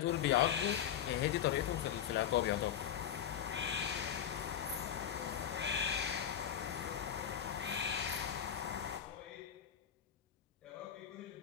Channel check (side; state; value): right; quieter; 9.5 dB